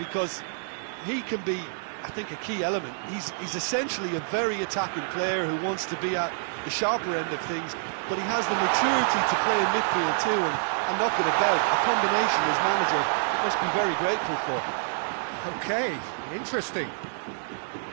he can be, I think, a key element. He's essentially a very attacking player who wants to be at the sharper end of things, but he has the maturity to play in midfield too and knock it about. A combination his manager must be very grateful for. Okay, interesting.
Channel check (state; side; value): silent; left; 60 dB below the other